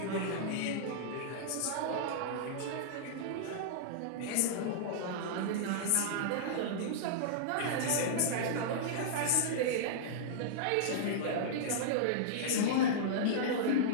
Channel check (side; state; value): both; different; correlation -0.02